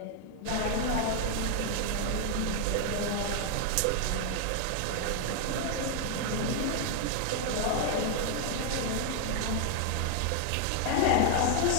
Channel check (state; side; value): different; both; correlation 0.00